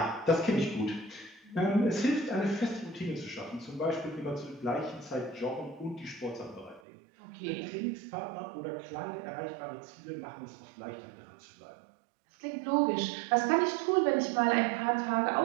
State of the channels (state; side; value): drops out; left; at 6.8 s